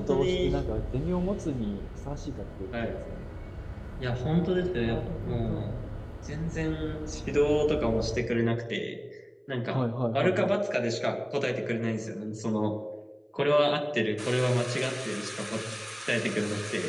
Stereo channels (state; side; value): identical; both; correlation 1.00